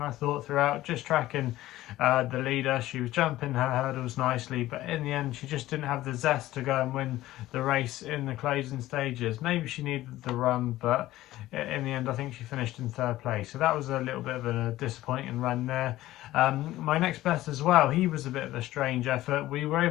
thought throughout, just tracking the leader. She was jumping her hurdles nicely, but in the end she just didn't have the zest to go and win the race in the closing stages. Maybe she needed the run, but in the end I think she finished in third place, so that was a little bit of a disappointing run there. My next bet as well, he was a bit of a strange effort. We were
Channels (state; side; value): quieter; right; 15.7 dB